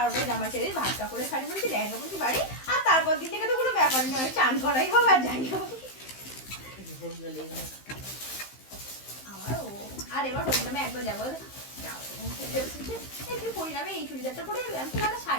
জামা ছেড়ে ভাতটা করে শাড়ি পরেছি, লেহেঙ্গা পরেছি বাড়ি। আর তারপর দিন থেকে তো কোনো ব্যাপারই নয়, চান করাই হোক আর যাই হোক। আমার ও আর এবার হরিনামে একবার যাবো, একটু পরিণামে এই চুড়িদারটা পরে যাবে। আমি তো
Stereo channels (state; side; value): late; right; 15 ms